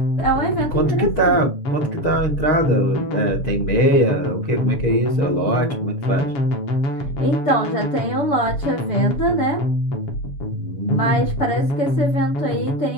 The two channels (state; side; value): late; right; 7.0 ms